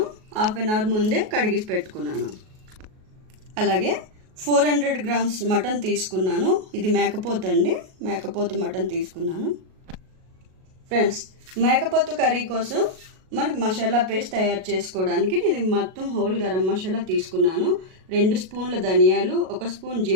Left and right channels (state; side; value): late; left; 38 ms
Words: హాఫ్ అన్ అవర్ ముందే కడిగి పెట్టుకున్నాను. అలాగే 400 గ్రామ్స్ మటన్ తీసుకున్నాను. ఇది మేకపోతు అండి, మేకపోతు మటన్ తీసుకున్నాను. ఫ్రెండ్స్, మేకపోతు కర్రీ కోసం మనకు మసాలా పేస్ట్ తయారు చేసుకోవడానికి నేను మొత్తం హోల్ గరం మసాలా తీసుకున్నాను. 2 స్పూన్ల ధనియాలు, 1 స్పూన్